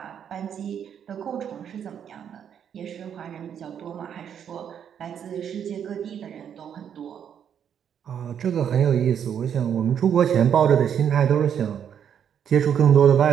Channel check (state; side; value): quieter; left; 8.6 dB